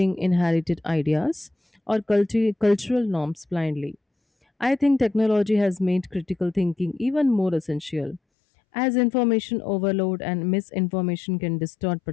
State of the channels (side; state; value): right; drops out; at 8.2 s